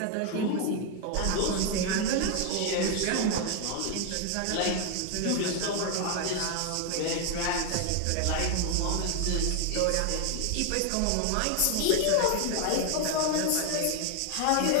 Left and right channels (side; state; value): both; different; correlation 0.00